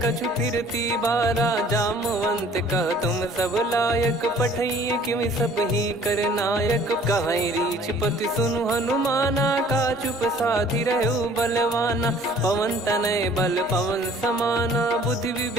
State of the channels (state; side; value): normal; both; correlation 0.53